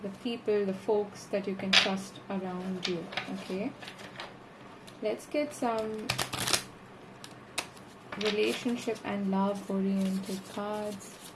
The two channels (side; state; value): both; identical; correlation 1.00